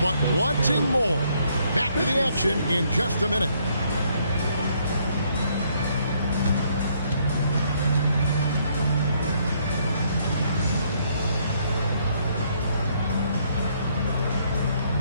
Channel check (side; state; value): both; inverted; correlation -0.69